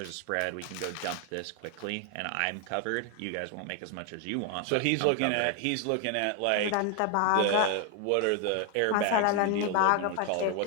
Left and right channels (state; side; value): different; both; correlation 0.01